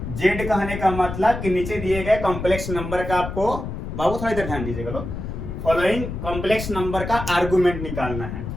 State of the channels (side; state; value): left; noise; rumble, 7 dB below the sound